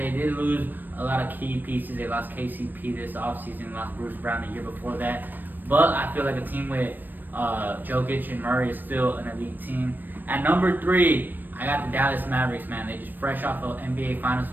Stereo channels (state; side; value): late; left; 0.091 ms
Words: did lose a lot of key pieces. They lost KCP this offseason, lost Bruce Brown the year before that. But I feel like a team with Jokic and Murray is still an elite team. At number 3, I got the Dallas Mavericks, man. They just fresh off an NBA Finals